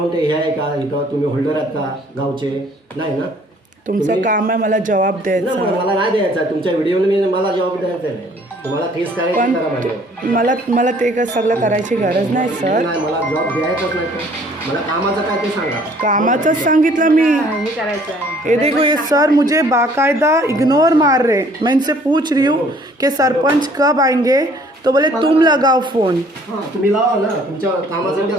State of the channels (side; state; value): both; normal; correlation 0.58